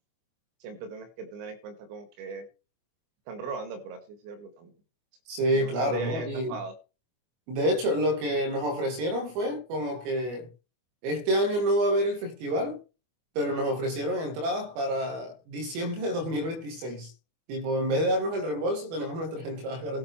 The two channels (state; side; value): late; left; 24 ms